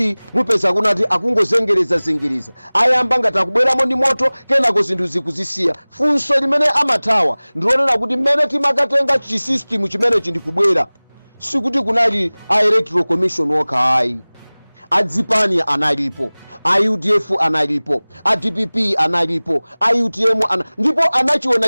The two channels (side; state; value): both; inverted; correlation -1.00